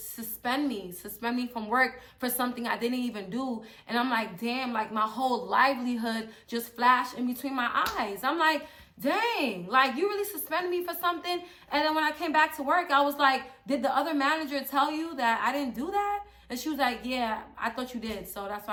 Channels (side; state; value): both; identical; correlation 1.00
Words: me from work for something I didn't even do. And I'm like, damn, like, my whole livelihood just flashed in between my eyes. I'm like, dang, like, you really suspended me for something? And then when I came back to work, I was like, did the other manager tell you that I didn't do that? And she was like, yeah, I thought you did, so that's